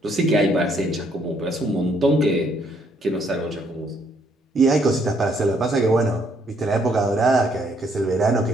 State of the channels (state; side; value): normal; both; correlation 0.69